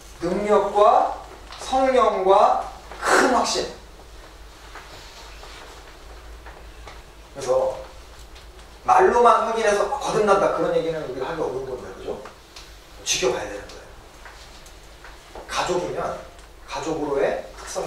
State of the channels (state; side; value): identical; both; correlation 1.00